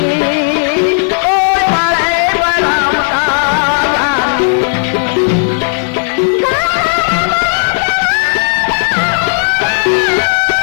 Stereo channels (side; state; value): right; silent; digital silence